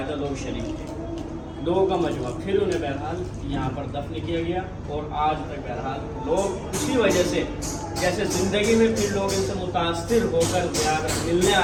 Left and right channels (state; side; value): identical; both; correlation 1.00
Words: لوگ شریک تھے, لوگوں کا مجموعہ. پھر انہیں بہرحال یہاں پر دفن کیا گیا اور آج تک بہرحال لوگ اسی وجہ سے جیسے زندگی میں پھر لوگ ان سے متاثر ہو کر ملنے